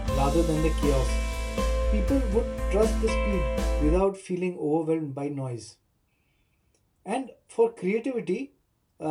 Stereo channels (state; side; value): identical; both; correlation 1.00